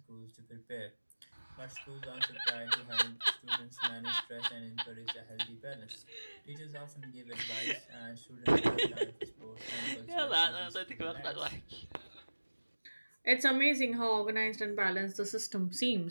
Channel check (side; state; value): both; inverted; correlation -1.00